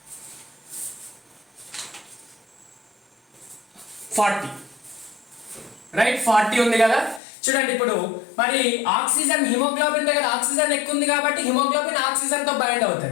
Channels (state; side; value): drops out; right; at 7.2 s